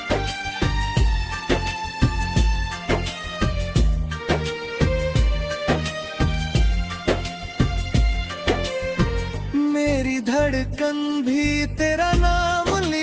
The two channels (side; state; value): both; identical; correlation 1.00